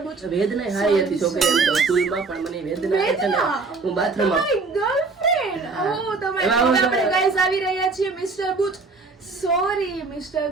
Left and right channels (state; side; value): quieter; left; 4.1 dB